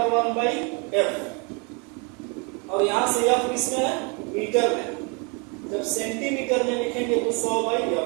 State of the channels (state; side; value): quieter; left; 33.2 dB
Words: 1/f, और यहां से f किसमें है? मीटर में। जब सेंटीमीटर में लिखेंगे तो